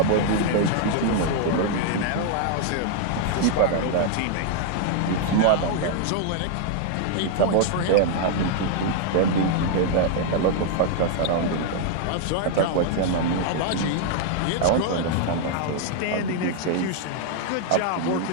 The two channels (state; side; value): different; both; correlation 0.00